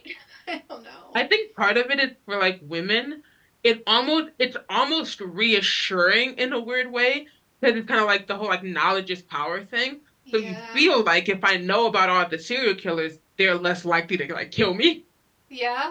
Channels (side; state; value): both; identical; correlation 1.00